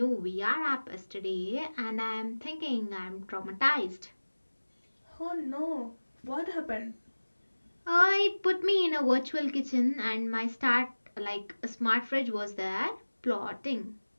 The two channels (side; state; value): both; inverted; correlation -1.00